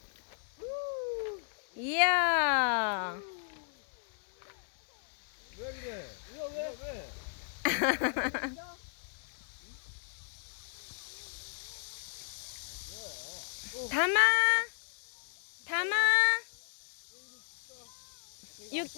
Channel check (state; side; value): silent; right; digital silence